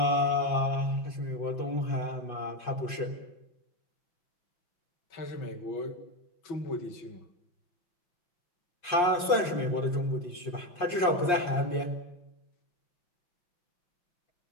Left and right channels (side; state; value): right; late; 5.7 ms